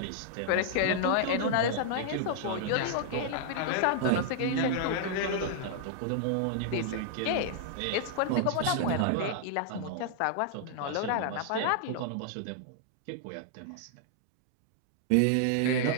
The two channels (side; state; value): both; different; correlation -0.01